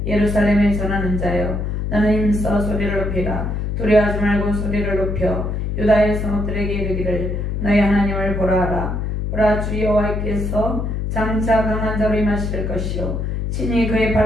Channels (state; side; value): noise; left; hum, 2 dB below the sound